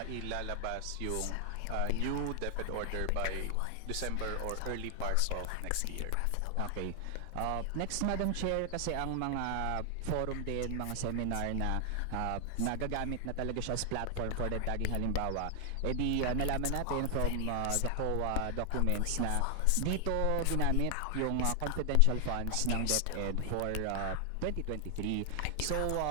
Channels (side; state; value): both; different; correlation 0.00